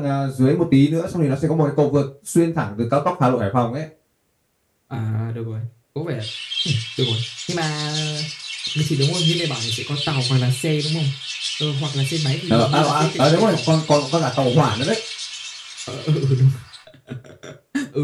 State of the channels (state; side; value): identical; both; correlation 1.00